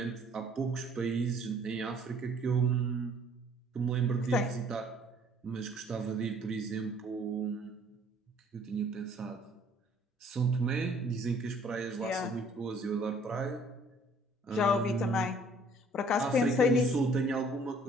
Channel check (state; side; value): normal; both; correlation 0.58